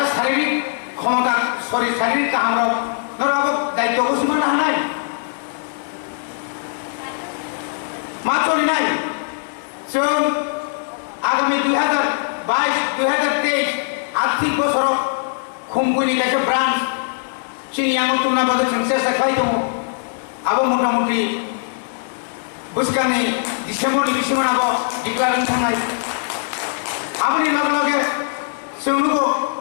শারীরিক ক্ষমতা শারীরিক কামরা নরাবো দায়িত্ব ঘোষণা হানায় মাচলি নাই जों आगामी 2022-2023 आर्थिक बছर खुमगुनि कायसे ब्रान्च चिनियाङाव तुमना बागै जों सेस्था खालाय दङ आबो मथा-मथि बोसोरनि डिसेम्बरनि बिसिमाव डिक्लारेसन थांनाय आबोनि लगे जों नुगौ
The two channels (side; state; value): right; silent; digital silence